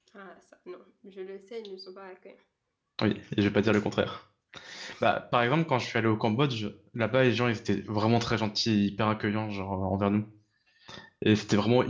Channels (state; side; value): identical; both; correlation 1.00